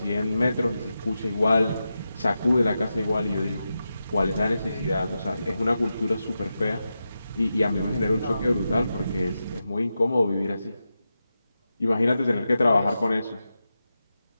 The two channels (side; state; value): both; inverted; correlation -0.90